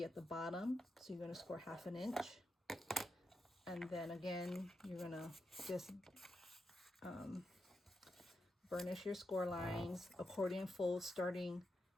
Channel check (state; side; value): normal; both; correlation 0.86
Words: at the bottom. So you're going to score 1/2 inch, and then again you're going to just burnish your score lines, accordion fold, starting